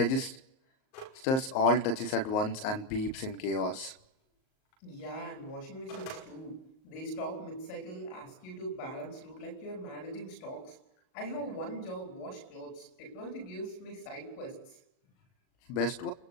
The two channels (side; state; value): right; late; 38 ms